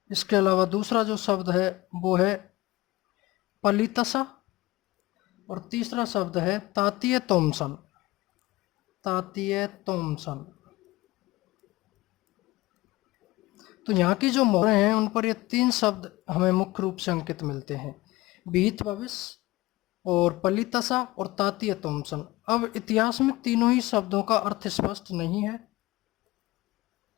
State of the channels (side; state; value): right; quieter; 19.6 dB